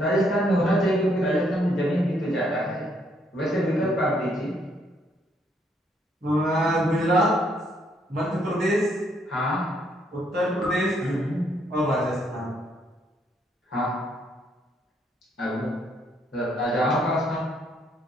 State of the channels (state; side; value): normal; both; correlation 0.71